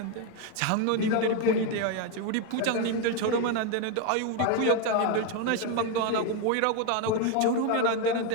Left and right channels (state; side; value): different; both; correlation 0.02